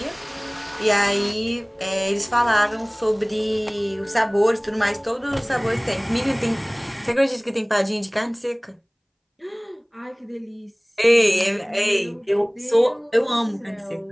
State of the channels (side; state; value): both; identical; correlation 1.00